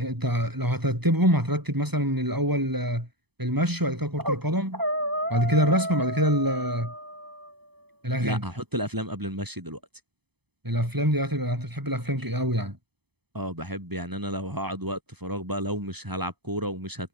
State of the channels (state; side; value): late; left; 0.98 ms